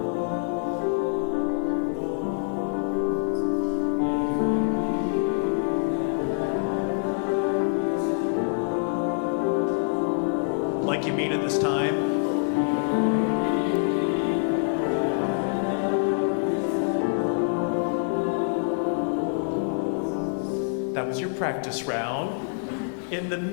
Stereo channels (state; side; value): silent; right; digital silence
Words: Like you mean it this time. That was your practice round. In the